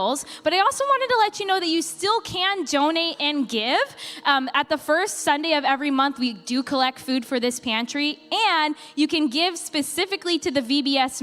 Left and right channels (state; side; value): identical; both; correlation 1.00